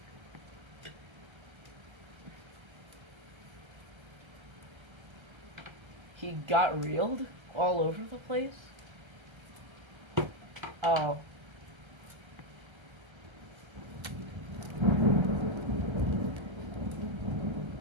He got reeled all over the place? Oh.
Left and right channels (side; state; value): left; late; 1.3 ms